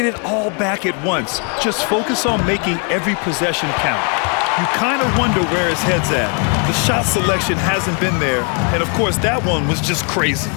it all back at once. Just focus on making every possession count. You kind of wonder where his head's at. The shot selection hasn't been there. And of course, that one was just crazy.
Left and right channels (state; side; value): quieter; right; 38.6 dB